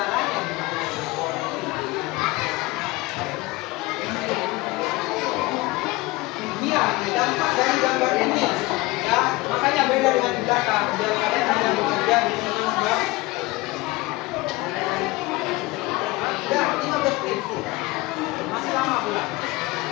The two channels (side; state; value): right; quieter; 21.2 dB